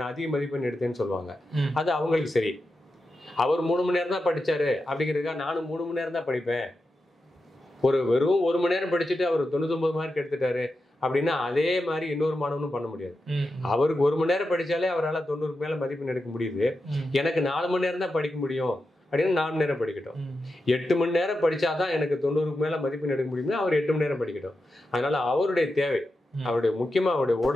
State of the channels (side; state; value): both; normal; correlation 0.89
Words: அதிக மதிப்பெண் எடுத்தேன்னு சொல்லுவாங்க. அது அவங்களுக்கு சரி. அவர் 3 மணி நேரம் தான் படித்தாரு அப்படிங்கிறதுக்காக நானும் 3 மணி நேரம் தான் படிப்பேன், வெறும் 1 மணி நேரம் படிச்சுட்டு அவர் 99 மார்க் எடுத்துட்டாரு அப்படின்னா அதே மாதிரி இன்னொரு மாணவனும் பண்ண முடியாது. அவருக்கு 1 மணி நேரம் படிச்சாலே அவரால் 90க்கு மேல மதிப்பெண் எடுக்க முடியுது. எனக்கு 4 மணி நேரம் தான் படிக்க முடியும் அப்படின்னு 4 மணி நேரம் படிக்கட்டும். 8 மணி நேரம் படிச்சாதான் எனக்கு 90க்கு மேல மதிப்பெண் எடுக்க முடியும்னா அவர் 8 மணி நேரம் படிக்கட்டும். அதனால அவருடைய தேவை, அவருடைய முக்கியமா அவருடைய